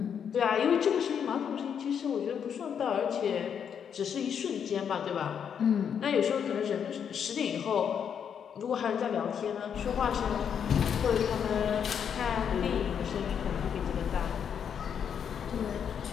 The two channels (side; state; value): right; quieter; 7.8 dB